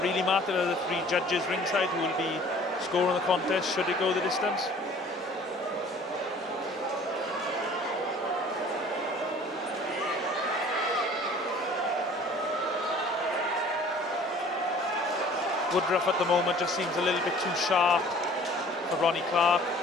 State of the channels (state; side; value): normal; both; correlation 0.50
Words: really matter are the 3 judges ringside who will be scoring the contest should it go the distance. Woodruff at the moment just seems a little bit too sharp for Ronnie Clark.